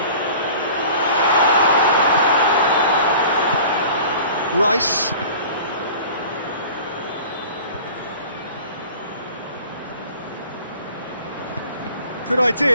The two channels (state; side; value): inverted; both; correlation -0.44